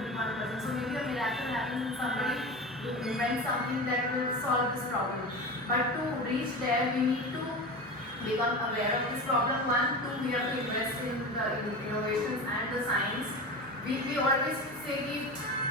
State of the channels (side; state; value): both; normal; correlation 0.28